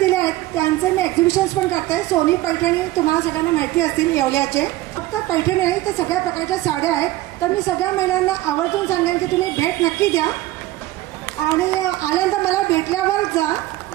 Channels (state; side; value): quieter; left; 16.7 dB